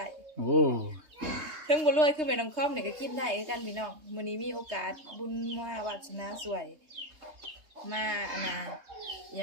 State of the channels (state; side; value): late; left; 3.2 ms